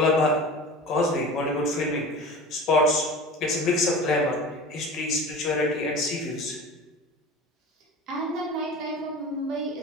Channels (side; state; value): both; normal; correlation 0.35